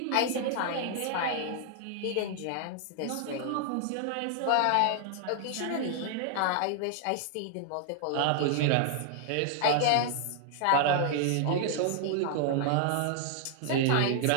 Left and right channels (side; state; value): both; different; correlation -0.01